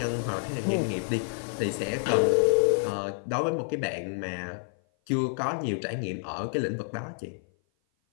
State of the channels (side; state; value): right; silent; 56 dB below the other